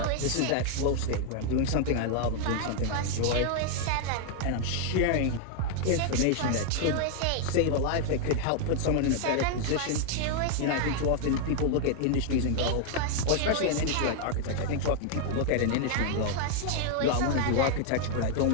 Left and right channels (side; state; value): both; different; correlation 0.00